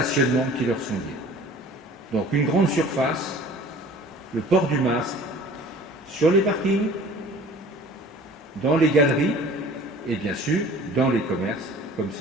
qui leur sont liés. Donc une grande surface, le port du masque sur les parkings, dans les galeries et bien sûr dans les commerces, comme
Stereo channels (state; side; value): normal; both; correlation 0.47